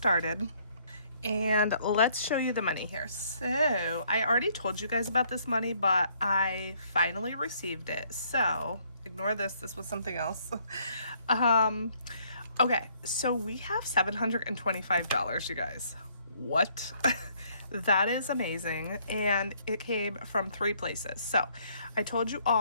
And let's show you the money here. So I already told you guys about this money, but I finally received it. So ignore this. This was something else. Okay, so we have $725, you guys. What? That is amazing. And it came from 3 places. So I told you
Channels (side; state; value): both; inverted; correlation -0.66